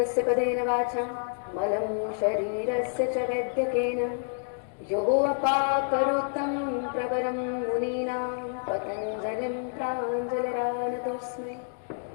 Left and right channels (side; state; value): right; silent; digital silence